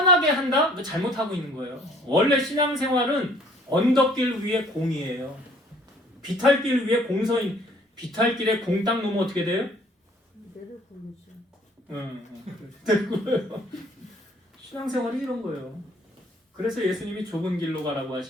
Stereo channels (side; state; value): both; normal; correlation 0.57